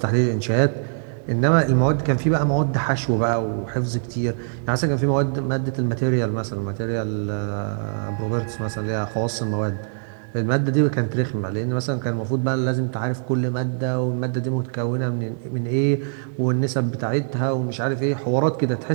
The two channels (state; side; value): silent; left; digital silence